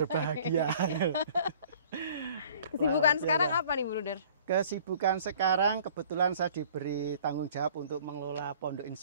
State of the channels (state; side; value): inverted; both; correlation -0.51